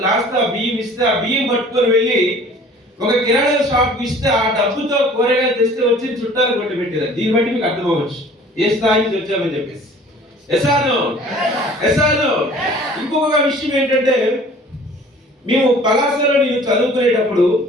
తో బియ్యం ఇస్తే ఆ బియ్యం పట్టుకొని వెళ్ళి ఒక కిరాణా షాప్ ఇస్తే ఆ డబ్బుతో కూరగాయలు తెస్తే వచ్చి చుట్టాలు కొట్టి పెట్టారు. దీన్ని బట్టి మీకు అర్థం అవ్వచ్చు ఏ స్థాయి నుంచి వచ్చామని చెప్పేసి. ఎసాను ఇంకొక విషయం ఏంటంటే, మేము పలాసలో నేను చదువుకునేటప్పుడు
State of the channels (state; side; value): normal; both; correlation 0.49